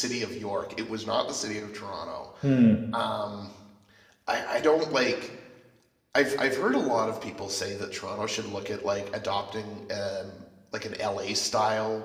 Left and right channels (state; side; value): identical; both; correlation 1.00